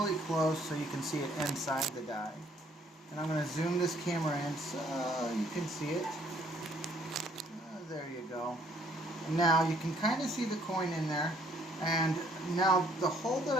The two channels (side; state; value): both; normal; correlation 0.63